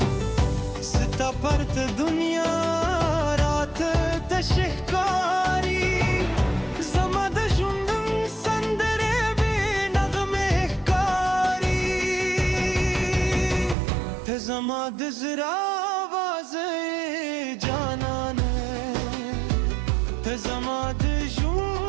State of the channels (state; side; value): drops out; left; at 13.8 s